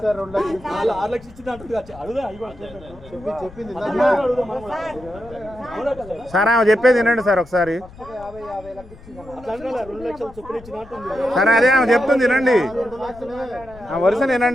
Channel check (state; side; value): noise; left; rumble, 19 dB below the sound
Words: లక్షలు ఇచ్చింది అంటుంది అడుగుదా చెప్పింది సార్ ఆమె చెప్పేది వినండి సార్ ఒకసారి. అట్లా 2 లక్షలు చొప్పున ఇచ్చిన అంటుంది. సరే అదే ఆమె చెప్తుంది వినండి, ఆ వరుస